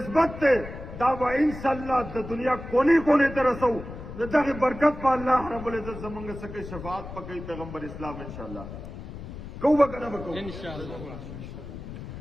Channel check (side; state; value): left; noise; rumble, 11 dB below the sound